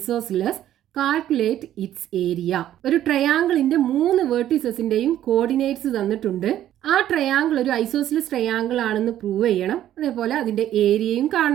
Calculate its area. ഒരു ട്രയാങ്കിളിന്റെ 3 വെർട്ടിസസിന്റെയും കോർഡിനേറ്റ്സ് തന്നിട്ടുണ്ട്. ആ ട്രയാങ്കിൾ ഒരു ഐസോസിലസ് ട്രയാങ്കിൾ ആണെന്ന് പ്രൂവ് ചെയ്യണം. അതേപോലെ അതിന്റെ ഏരിയയും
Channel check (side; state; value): left; quieter; 12.0 dB